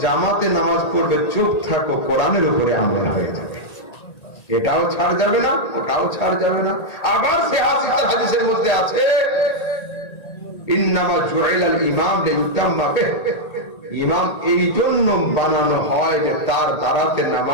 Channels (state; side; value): late; right; 1.9 ms